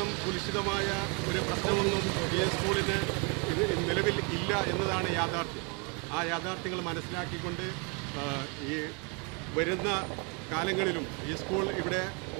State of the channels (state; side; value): quieter; left; 33.4 dB